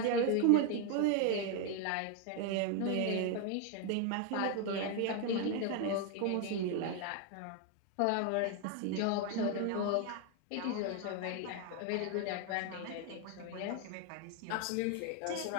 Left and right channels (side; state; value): both; different; correlation 0.01